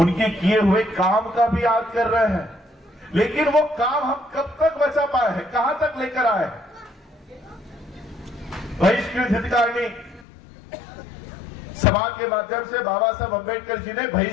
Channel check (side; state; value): right; drops out; at 10.2 s